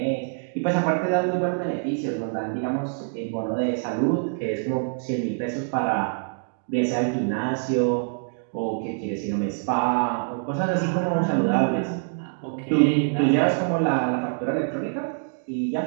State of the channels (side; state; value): left; silent; digital silence